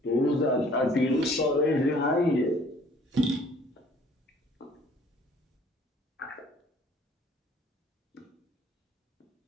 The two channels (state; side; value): normal; both; correlation 0.56